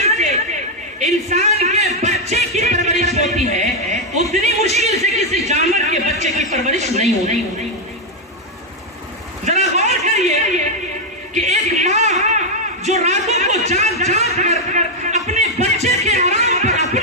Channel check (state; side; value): normal; both; correlation 0.02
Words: سے انسان کے بچے کی پرورش ہوتی ہے، اتنی مشکل سے کسی جانور کے بچے کی پرورش نہیں ہوتی۔ ذرا غور کریے کہ ایک ماں جو راتوں کو جاگ جاگ کر اپنے بچے کے آرام پر